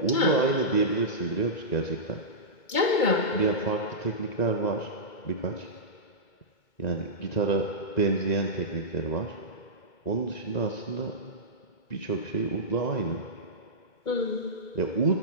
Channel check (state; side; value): late; right; 2.2 ms